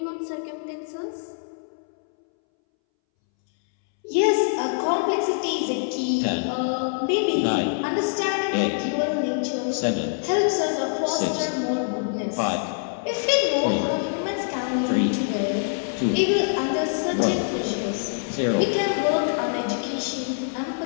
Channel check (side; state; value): right; silent; 62 dB below the other